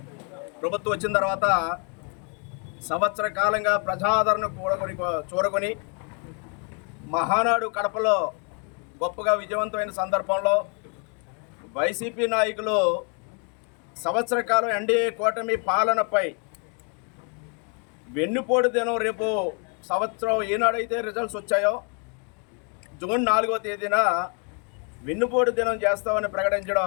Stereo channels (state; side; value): quieter; right; 38.2 dB